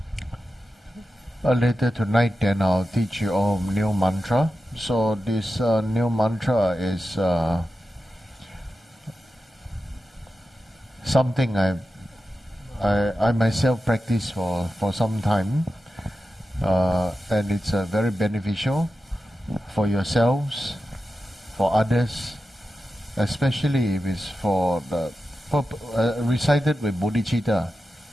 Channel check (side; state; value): both; normal; correlation 0.91